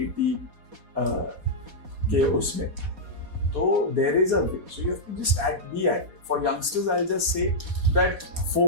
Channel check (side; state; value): left; late; 4.1 ms